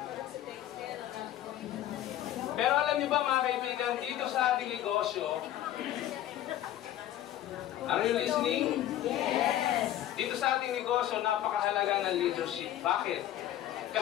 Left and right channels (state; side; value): quieter; right; 12.6 dB